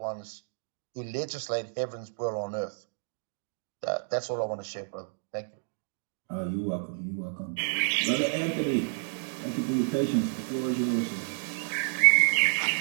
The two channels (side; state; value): left; silent; digital silence